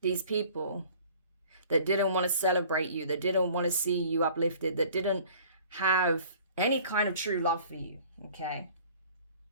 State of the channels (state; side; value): inverted; both; correlation -0.50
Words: These people that didn't want to celebrate you, that didn't want to see you uplifted, that didn't have any kind of true love for you, okay?